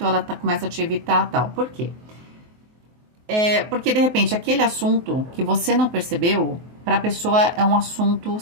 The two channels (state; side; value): late; left; 23 ms